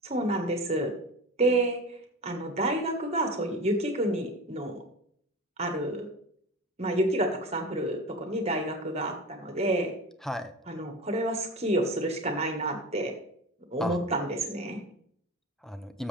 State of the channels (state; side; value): normal; both; correlation 0.30